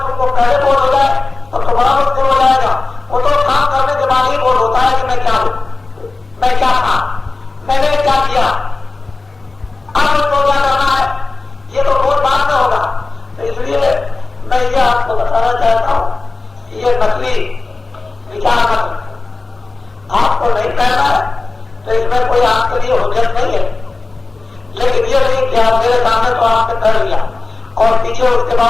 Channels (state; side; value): quieter; right; 3.6 dB